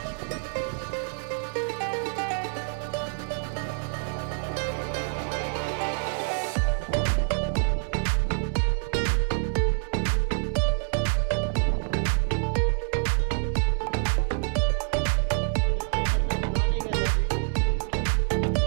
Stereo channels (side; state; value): left; silent; 60 dB below the other